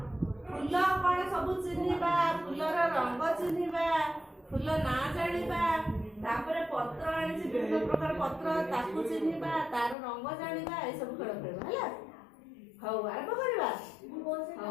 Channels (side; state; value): right; drops out; at 10.0 s